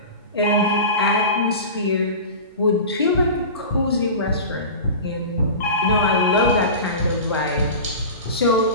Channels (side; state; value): both; inverted; correlation -0.31